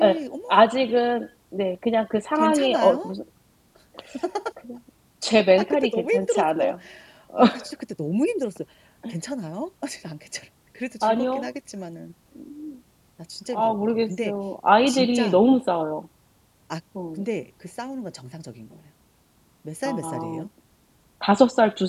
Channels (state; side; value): identical; both; correlation 1.00